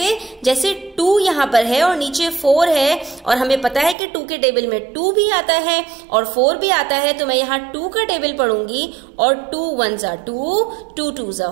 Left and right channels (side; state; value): left; drops out; at 4.0 s